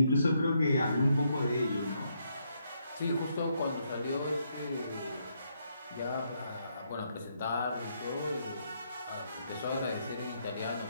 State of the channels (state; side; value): inverted; both; correlation -0.76